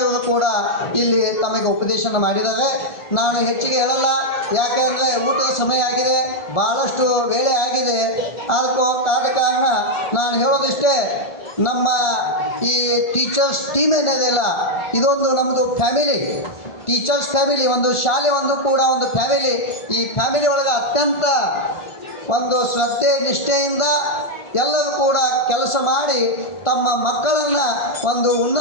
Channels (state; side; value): late; right; 1.4 ms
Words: ಇವರು ಕೂಡ ಇಲ್ಲಿ ತಮಗೆ ಉಪದೇಶನ ಮಾಡಿದ್ದಾರೆ. ನಾನು ಹೆಚ್ಚಿಗೆ ಹೇಳಲ್ಲ, ಯಾಕೆ ಅಂದರೆ ಊಟದ ಸಮಯ ಆಗಿದೆ, ಭಾಳಷ್ಟು ವೇಳೆ ಆಗಿದೆ. ಆದ ಕಾರಣ ನಾನು ಹೇಳೋದಿಷ್ಟೇ, ನಮ್ಮ ಈ ಟೀಚರ್ಸ್ ಟೀಮ್ ಏನಿದೆಯಲ್ಲ, ಇದೊಂದು ನಮ್ಮದು ಫ್ಯಾಮಿಲಿ, ಟೀಚರ್ಸ್ ಫ್ಯಾಮಿಲಿ, ಒಂದು ಶಾಲೆ ಒಂದು ಕೂಡ ಒಂದು ಫ್ಯಾಮಿಲಿ. ಈ ಫ್ಯಾಮಿಲಿ ಒಳಗೆ ಅತ್ಯಂತ ಒಂದು ಶ್ರದ್ಧೆ ನಿಷ್ಠೆಯಿಂದ ಎಲ್ಲರೂ ಕೂಡ ಕೆಲಸ ಮಾಡಿ ತಮ್ಮ ಮಕ್ಕಳನ್ನು ಒಂದು